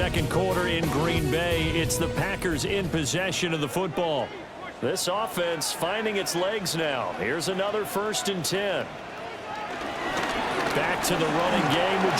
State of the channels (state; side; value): identical; both; correlation 1.00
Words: quarter in Green Bay. It's the Packers in possession of the football. This offense finding its legs now. Here's another 1st and 10. Back to the running game with